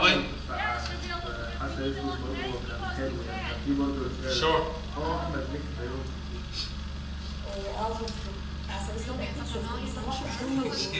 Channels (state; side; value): identical; both; correlation 1.00